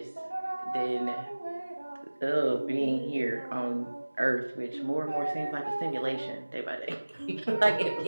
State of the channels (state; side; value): inverted; both; correlation -1.00